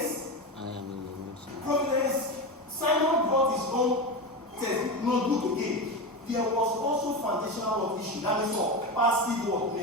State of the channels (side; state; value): both; normal; correlation 0.19